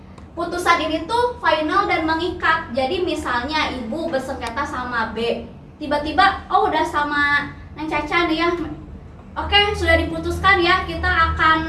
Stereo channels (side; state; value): both; identical; correlation 1.00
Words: putusan ini tuh final dan mengikat. Jadi misalnya ibu bersengketa sama B, tiba-tiba udah sama Neng Caca nih ya, oke sudah diputuskan ya, kita akan